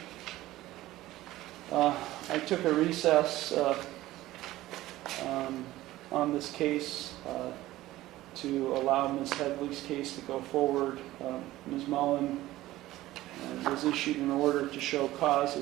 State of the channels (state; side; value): quieter; left; 16.3 dB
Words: I took a recess on this case to allow Ms. Headley's case to go forward. Ms. Mullen was issued an order to show cause